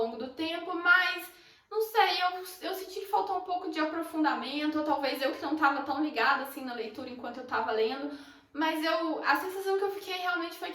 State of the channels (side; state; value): both; identical; correlation 1.00